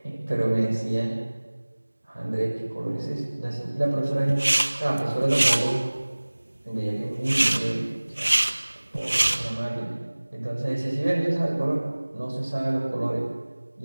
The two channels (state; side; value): inverted; both; correlation -1.00